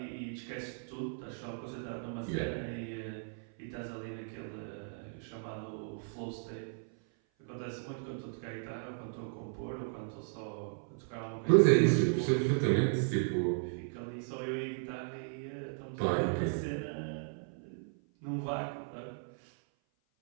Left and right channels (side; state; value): left; silent; 54 dB below the other